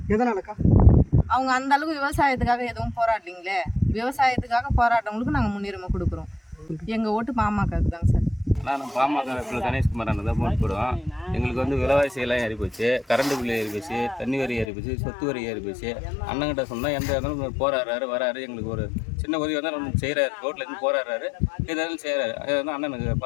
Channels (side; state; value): right; drops out; at 14.7 s